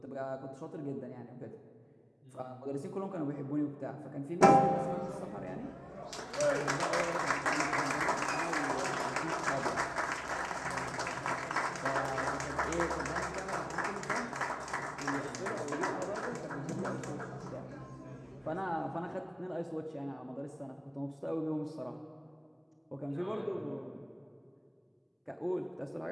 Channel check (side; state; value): both; identical; correlation 1.00